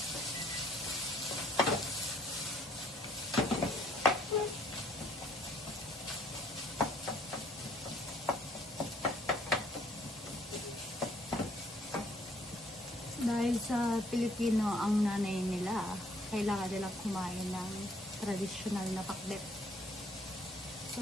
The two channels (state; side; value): normal; both; correlation 0.62